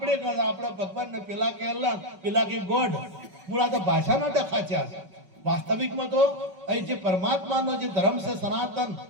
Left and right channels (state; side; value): late; left; 5.3 ms